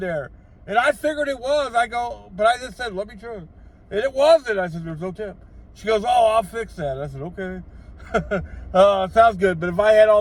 And I figured it was. I go, but I just said, let me try. And it wasn't. I said, there's no tip. She goes, oh, I'll fix that. I said, okay. Sounds good. But if I had all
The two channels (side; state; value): both; identical; correlation 1.00